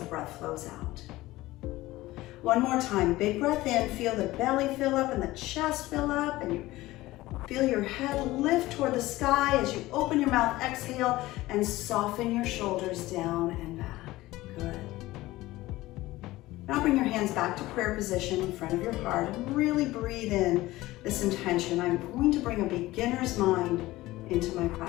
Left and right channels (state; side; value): quieter; right; 17.9 dB